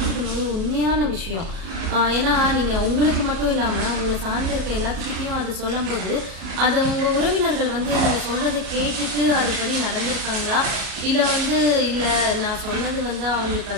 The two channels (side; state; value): left; late; 37 ms